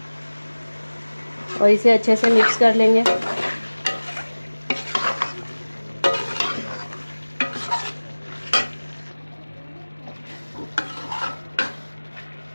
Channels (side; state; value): both; inverted; correlation -1.00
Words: और इसे अच्छे से मिक्स कर लेंगे।